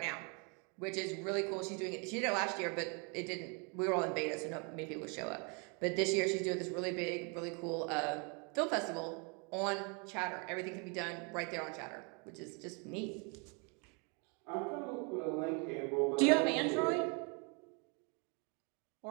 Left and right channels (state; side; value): quieter; left; 34.2 dB